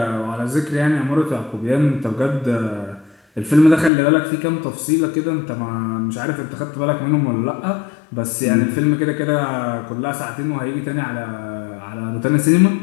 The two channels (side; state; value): right; drops out; at 3.9 s